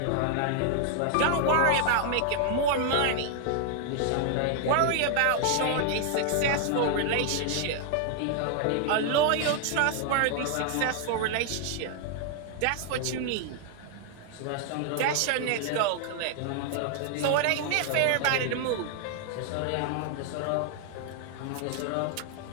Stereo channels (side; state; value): both; different; correlation 0.00